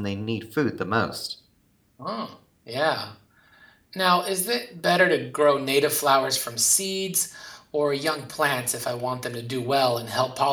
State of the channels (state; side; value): identical; both; correlation 1.00